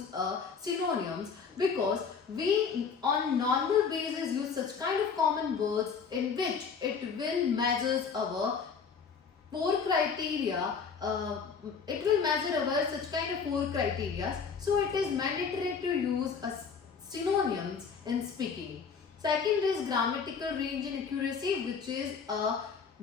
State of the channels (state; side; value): quieter; right; 5.9 dB